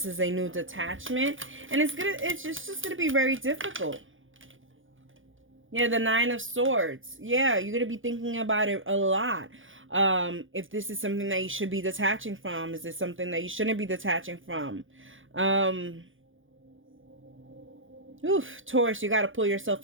is a new detachment, and it's just gonna be very difficult. Yeah, the Nine of Swords. Yeah, you're gonna be thinking about it a lot. If this is something that you should be detaching from, is this something that you shouldn't be detaching from? Taurus, you got to pull yourself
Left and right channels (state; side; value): late; left; 0.58 ms